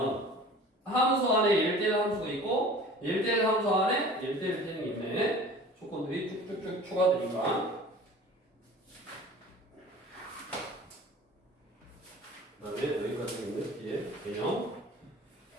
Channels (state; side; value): normal; both; correlation 0.43